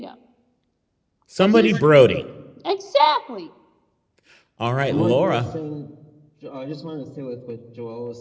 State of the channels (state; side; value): identical; both; correlation 1.00